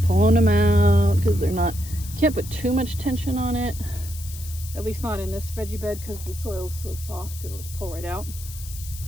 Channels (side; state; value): left; noise; hiss, 14 dB below the sound